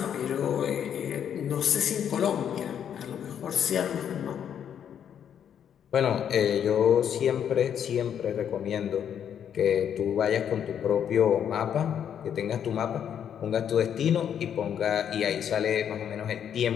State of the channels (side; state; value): right; quieter; 8.9 dB